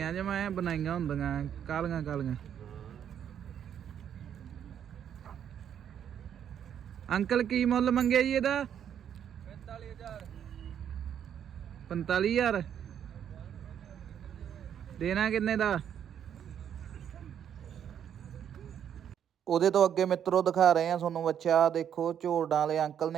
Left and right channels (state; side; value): quieter; left; 9.1 dB